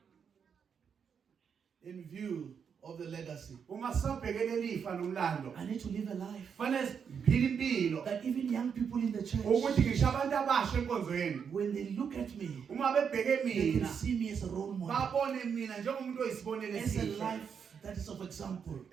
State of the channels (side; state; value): left; quieter; 6.9 dB